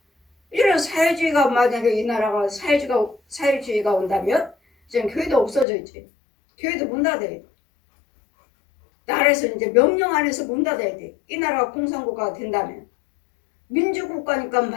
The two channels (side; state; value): right; drops out; at 5.7 s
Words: 이런 사회주의가 만약에 이 나라가 사회주의가 온다면 지금 교회도 없어져 있지. 교회도 문 닫아야 돼. 나라에서 이제 명령 안에서 문 닫아야 돼. 이 나라가 공산국가가 된다면 민주국가니까